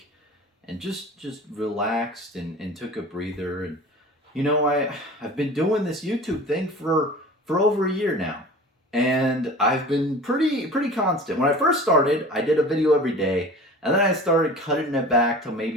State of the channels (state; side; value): normal; both; correlation 0.39